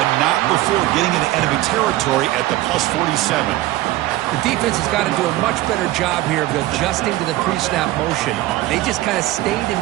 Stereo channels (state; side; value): quieter; left; 16.5 dB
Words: not before getting into enemy territory at the plus 47. The defense has got to do a much better job here of adjusting to the pre-snap motion. They just kind of stayed in